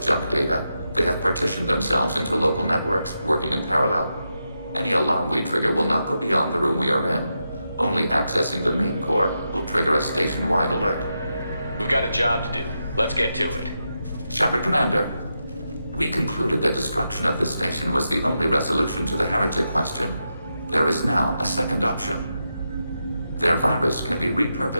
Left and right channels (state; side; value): inverted; both; correlation -0.86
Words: data. They have partitioned themselves into local networks, working in parallel. Any alarm we trigger will not go beyond the room we are in. Only accessing the main core will trigger a station-wide alert. We've got a job to do. Let's get to it. Shepard, Commander. We concluded that destruction of this station was the only resolution to the heretic question. There is now a second option. Their virus can be